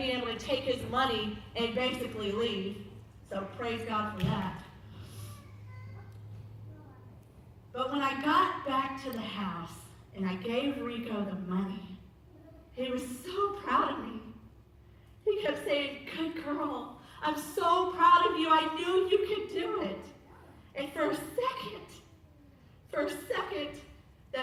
able to take his money and basically leave. So praise God for that. But when I got back to the house and I gave Rico the money, he was so proud of me. He kept saying, "Good girl, I'm so proud of you. I knew you could do it." And for a second,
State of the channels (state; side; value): identical; both; correlation 1.00